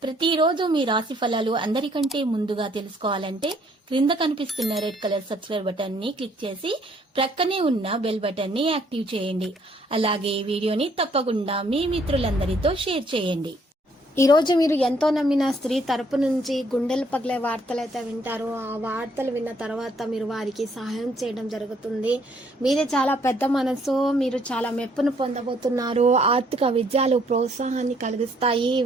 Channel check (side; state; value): both; normal; correlation 0.66